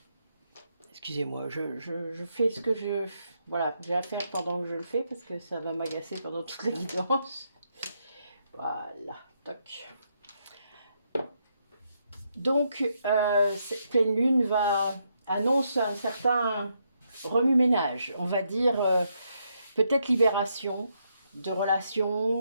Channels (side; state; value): both; inverted; correlation -0.78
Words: excusez-moi, je fais ce que voilà, j'ai à faire pendant que je le fais parce que ça va m'agacer pendant toute la guidance. Voilà, toc. Donc, cette pleine lune annonce un certain remue-ménage, on va dire peut-être libération de